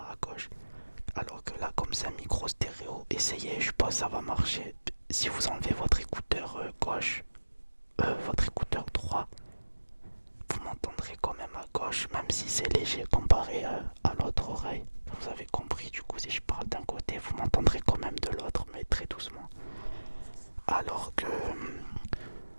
à gauche. Alors que là, comme c'est un micro stéréo, essayez, je pense que ça va marcher. Si vous enlevez votre écouteur gauche, votre écouteur droit, vous m'entendrez quand même à gauche, même si c'est léger comparé à l'autre oreille. Vous avez compris, du coup, si je parle d'un côté, vous m'entendrez quand même de l'autre, mais très doucement. Alors que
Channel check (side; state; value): both; inverted; correlation -1.00